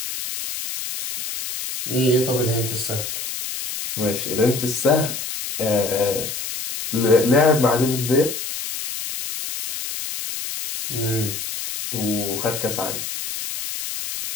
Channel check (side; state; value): left; noise; hiss, 6 dB below the sound